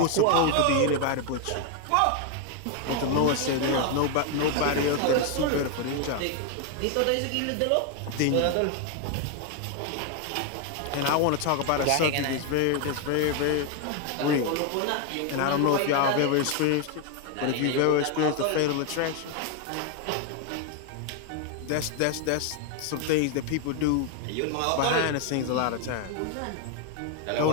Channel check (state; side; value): different; both; correlation 0.01